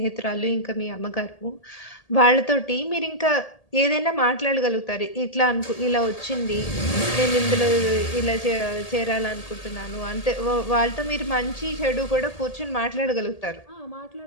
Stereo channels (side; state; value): right; late; 1.8 ms